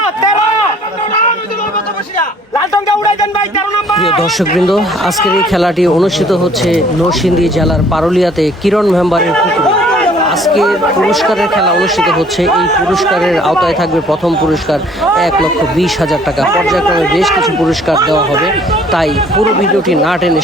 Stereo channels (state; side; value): normal; both; correlation 0.57